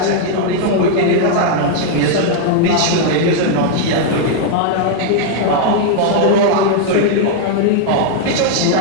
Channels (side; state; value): both; different; correlation 0.00